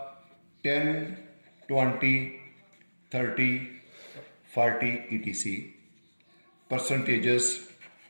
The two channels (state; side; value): inverted; both; correlation -1.00